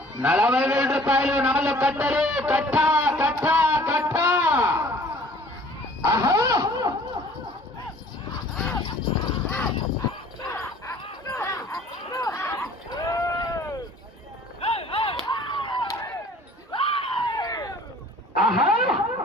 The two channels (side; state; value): both; normal; correlation 0.52